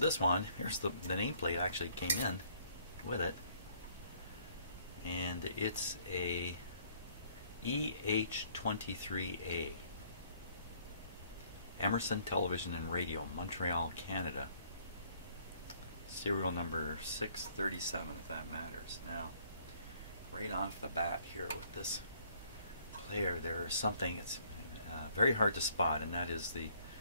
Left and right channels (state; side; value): inverted; both; correlation -0.62